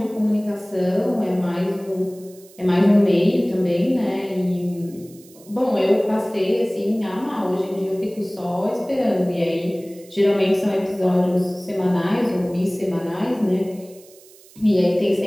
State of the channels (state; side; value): noise; right; hiss, 24 dB below the sound